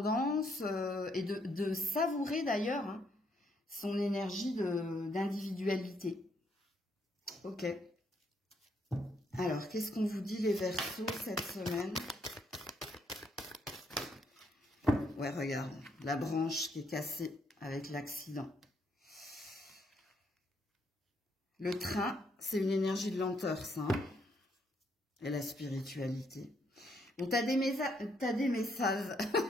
et de savourer d'ailleurs hein, son énergie d'individualité. Ok. Alors, qu'est-ce qu'on vous dit les Verseaux cette semaine? Ouais, regarde, la branche qui est cassée avec l'accident. Le train, c'est une énergie de lenteur, ça. Hein. Et la spiritualité. Bon, t'as des messages.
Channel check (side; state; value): both; normal; correlation 0.73